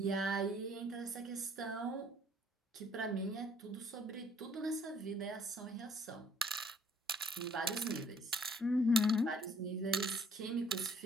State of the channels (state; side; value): normal; both; correlation 0.60